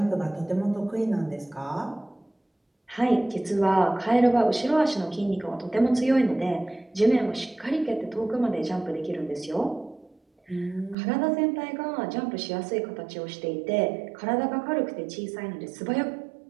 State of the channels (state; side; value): drops out; left; at 11.0 s